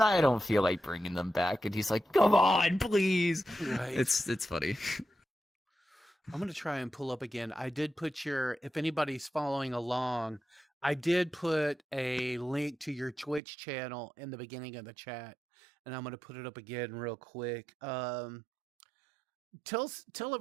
don't feel like bringing them back. And he's like, come on, please. Right. It's funny. I'm gonna try and pull up again. I did put if anybody's following along, I did put a link to your Twitch channel in the beginning of the chat, and I'm gonna put it up again real quick. Tell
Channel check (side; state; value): left; drops out; at 13.4 s